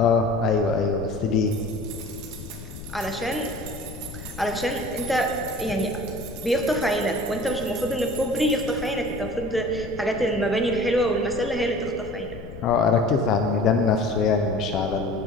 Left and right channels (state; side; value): noise; left; rumble, 13 dB below the sound